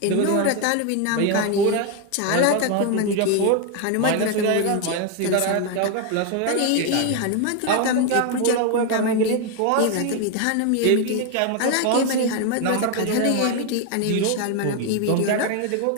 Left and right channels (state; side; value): different; both; correlation 0.01